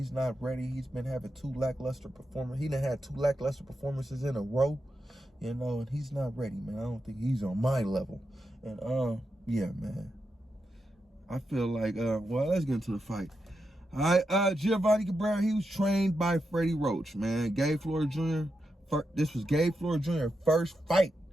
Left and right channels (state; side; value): normal; both; correlation 0.87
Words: not ready. He's been having 2 lackluster performances. He done had 2 lackluster performances in a row. And he's not ready, man. I don't think he's on my level. And yeah, man. I feel like well, let's get into the fight. All right, Giovanni Cabrera, he was trained by Freddie Roach, man. Gabe Flores Jr. This was Gabe Flores Jr. first fight